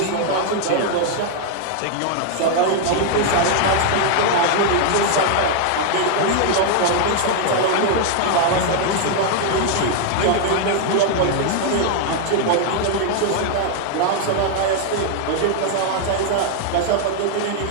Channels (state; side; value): different; both; correlation 0.00